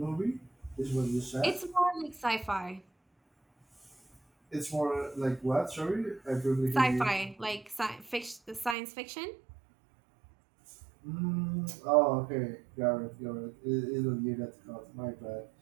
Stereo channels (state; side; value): drops out; left; at 8.8 s